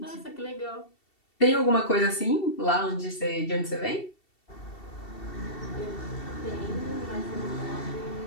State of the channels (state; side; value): late; right; 2.7 ms